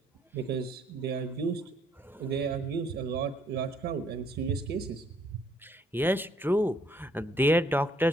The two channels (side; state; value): both; normal; correlation 0.66